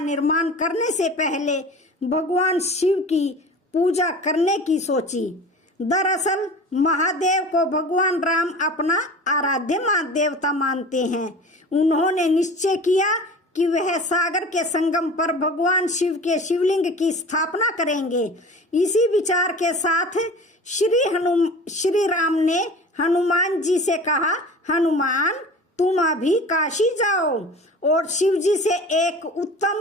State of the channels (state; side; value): normal; both; correlation 0.38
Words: निर्माण करने से पहले भगवान शिव की पूजा करने की सोची। दरअसल महादेव को भगवान राम अपना आराध्य मां देवता मानते हैं। उन्होंने निश्चय किया कि वह सागर के संगम पर भगवान शिव के शिवलिंग की स्थापना करेंगे। इसी विचार के साथ श्री राम ने हनुमान जी से कहा, हनुमान तुम अभी काशी जाओ और शिव जी से एक